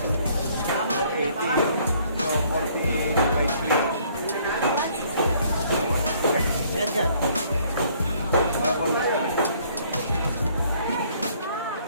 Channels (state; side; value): inverted; both; correlation -0.62